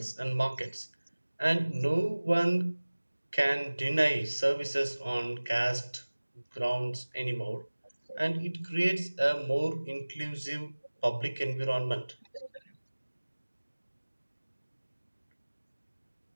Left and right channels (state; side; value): inverted; both; correlation -1.00